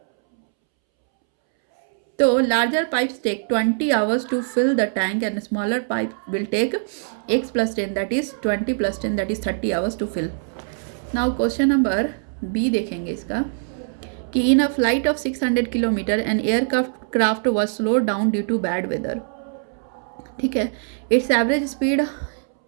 तो larger pipes take 20 hours to fill the tank and smaller pipe will take x plus 10 that is 20 plus 10 that is 30 hours to fill. Now question number B देखेंगे इसका कि in a flight of 600 kilometer an aircraft was slowed down due to bad weather. ठीक है, its average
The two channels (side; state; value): left; silent; 64 dB below the other